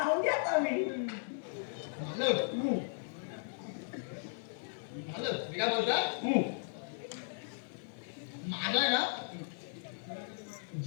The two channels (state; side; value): silent; right; 54 dB below the other